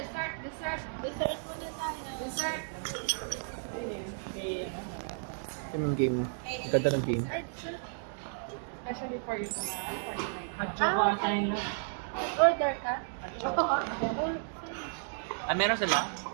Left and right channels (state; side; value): silent; left; digital silence